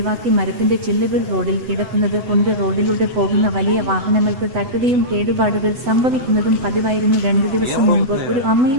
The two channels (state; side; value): late; left; 8.0 ms